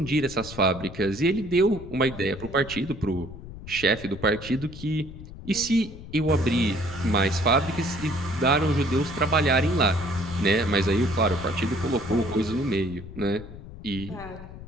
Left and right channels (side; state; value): left; noise; rumble, 14 dB below the sound